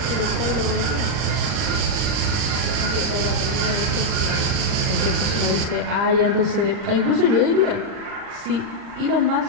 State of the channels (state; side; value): late; left; 39 ms